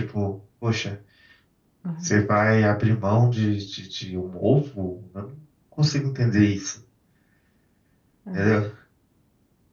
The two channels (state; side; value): identical; both; correlation 1.00